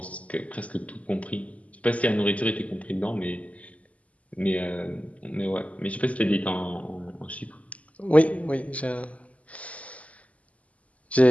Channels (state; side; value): late; right; 0.068 ms